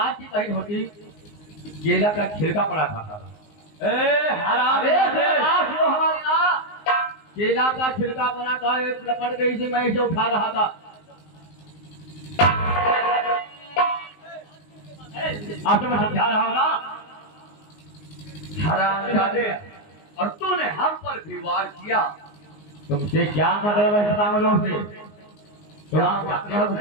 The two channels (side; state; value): right; late; 19 ms